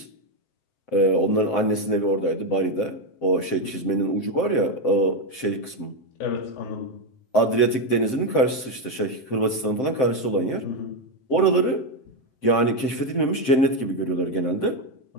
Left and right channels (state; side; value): late; right; 7.7 ms